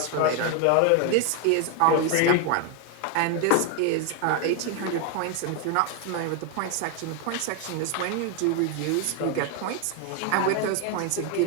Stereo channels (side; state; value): both; different; correlation 0.01